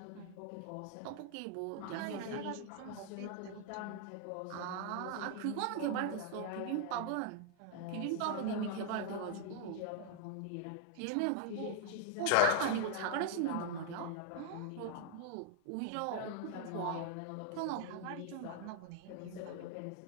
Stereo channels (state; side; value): different; both; correlation 0.00